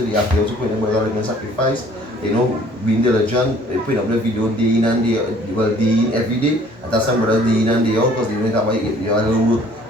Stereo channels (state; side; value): normal; both; correlation 0.56